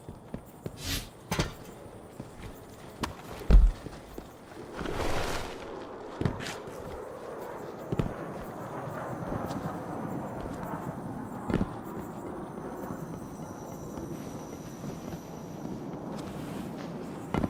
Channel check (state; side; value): identical; both; correlation 1.00